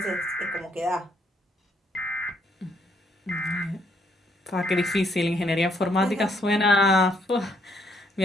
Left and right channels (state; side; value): normal; both; correlation 0.71